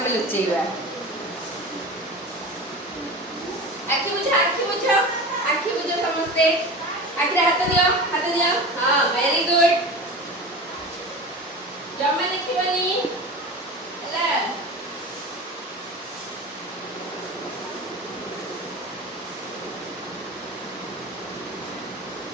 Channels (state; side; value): normal; both; correlation 0.32